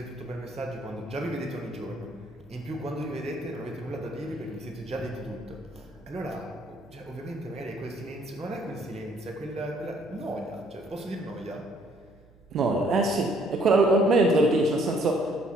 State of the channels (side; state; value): right; noise; hum, 27 dB below the sound